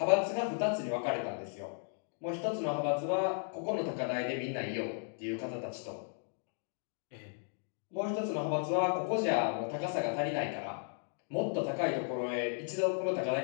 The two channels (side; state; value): right; silent; 54 dB below the other